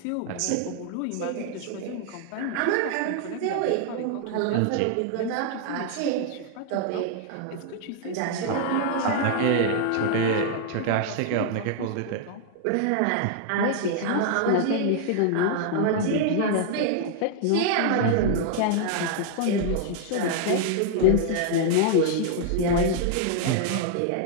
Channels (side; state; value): both; different; correlation -0.01